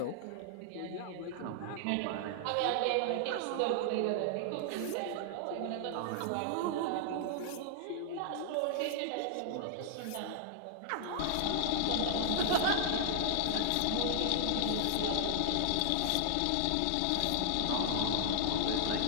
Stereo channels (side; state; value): both; different; correlation -0.01